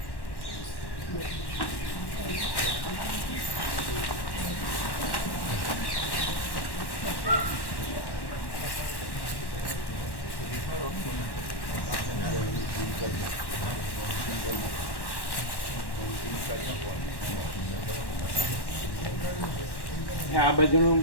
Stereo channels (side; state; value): right; late; 1.1 ms